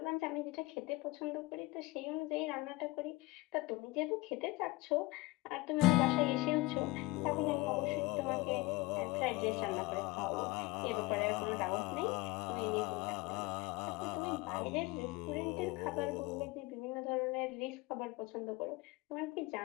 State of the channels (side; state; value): right; quieter; 21.8 dB